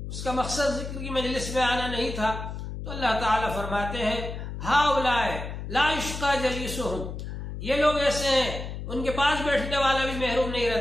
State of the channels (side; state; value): left; noise; hum, 7 dB below the sound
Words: اس کا مقصد ذکر کی مجلس میں آنا نہیں تھا، تو اللہ تعالیٰ فرماتے ہیں ہاؤلائے لا یشقى جلیسہم، یہ لوگ ایسے ہیں ان کے پاس بیٹھنے والا بھی محروم نہیں